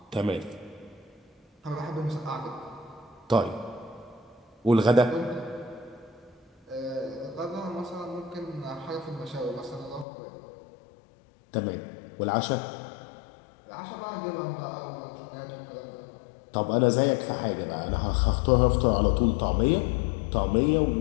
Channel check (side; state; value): right; drops out; at 10.1 s